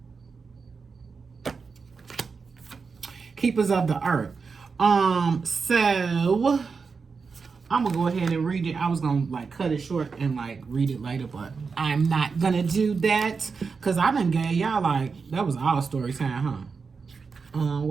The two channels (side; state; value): left; quieter; 5.1 dB